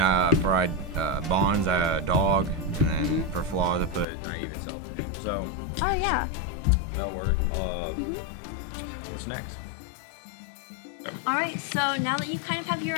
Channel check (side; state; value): right; drops out; at 4.0 s